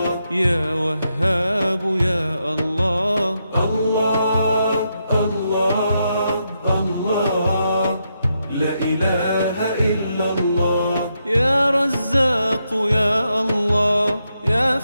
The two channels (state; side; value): inverted; both; correlation -0.82